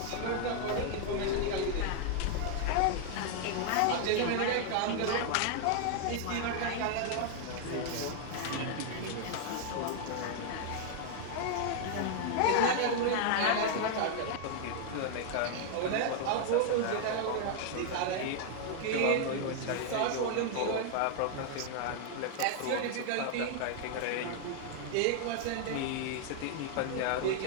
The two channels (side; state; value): both; different; correlation 0.00